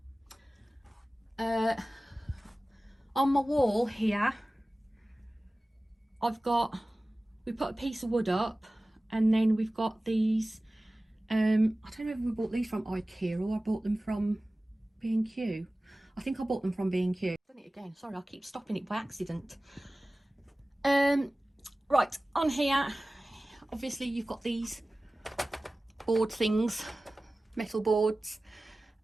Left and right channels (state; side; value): normal; both; correlation 0.97